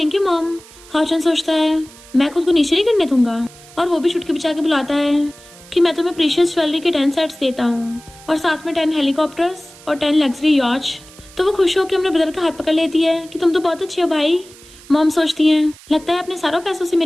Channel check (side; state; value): right; noise; hiss, 22 dB below the sound